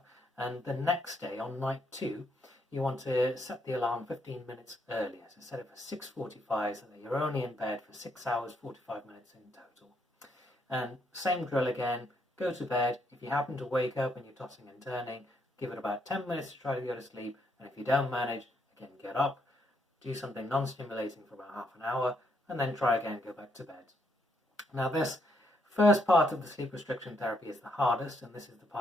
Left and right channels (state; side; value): normal; both; correlation 0.74